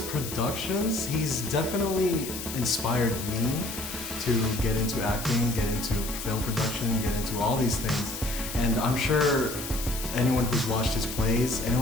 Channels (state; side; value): noise; left; hiss, 8 dB below the sound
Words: he's definitely inspired me to get into acting, get into film production, get into all these things. And I'm sure anyone who's watched his plays,